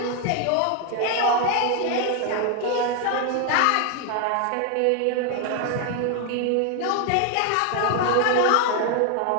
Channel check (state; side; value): different; both; correlation 0.00